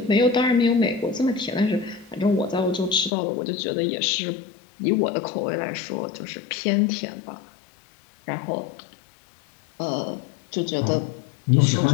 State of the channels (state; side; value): drops out; right; at 3.1 s